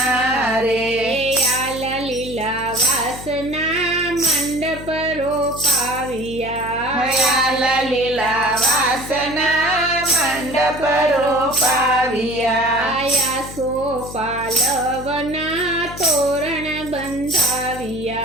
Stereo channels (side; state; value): left; noise; hum, 13 dB below the sound